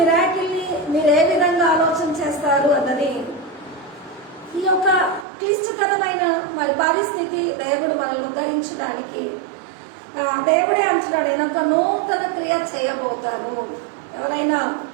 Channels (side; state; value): left; drops out; at 5.2 s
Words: మీరు ఏ విధంగా ఆలోచన చేస్తారు అన్నది ఈ యొక్క క్లిష్టతరమైన మరి పరిస్థితి దేవుడు మనల్ని ఉద్ధరించడానికి దేవుడే అంటున్నాడు, నేను ఒక నూతన క్రియ చేయబోతాను. ఎవరైనా